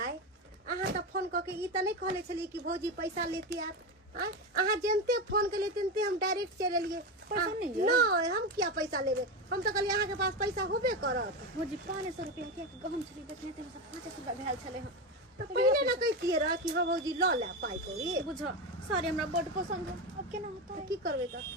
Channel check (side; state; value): both; normal; correlation 0.17